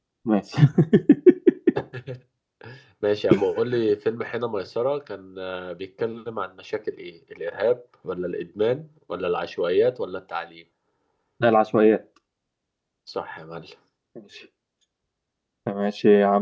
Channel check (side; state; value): both; identical; correlation 1.00